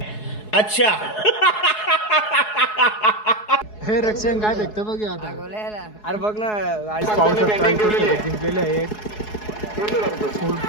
अच्छा. हे रक्षण काय भेटतं बघ आता. अरे बघ ना गाडी पाहू शकता इथं शर्यत जिंकलेले आहे.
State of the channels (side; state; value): right; late; 4.7 ms